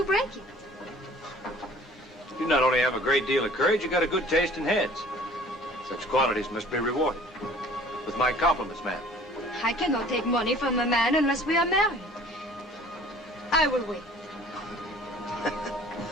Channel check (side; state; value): both; normal; correlation 0.50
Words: break it. You not only have a great deal of courage, you got a good taste in heads. Such qualities must be rewarded. With my compliments, ma'am. I cannot take money from a man unless we are married. I will wait.